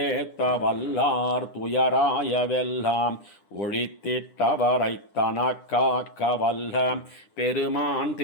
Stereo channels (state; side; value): late; right; 10 ms